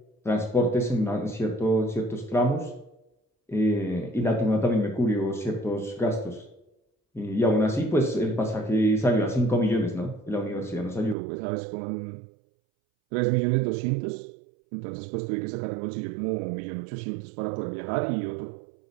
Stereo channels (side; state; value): left; drops out; at 11.2 s